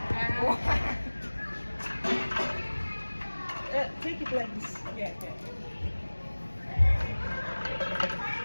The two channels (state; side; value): inverted; both; correlation -1.00